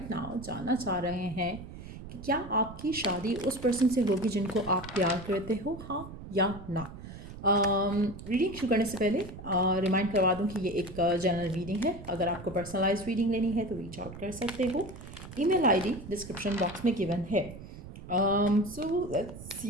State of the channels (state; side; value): noise; right; rumble, 13 dB below the sound